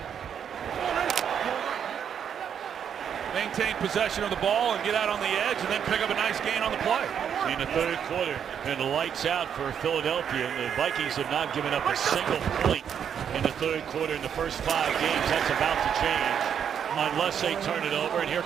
maintain possession of the ball and get out on the edge and then pick up a nice gain on the play. In the third quarter, and the lights out for Philadelphia. The Vikings have not given up a single point in the third quarter in the first 5 games. That's about to change unless they turn it over, and here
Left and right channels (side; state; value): left; quieter; 8.2 dB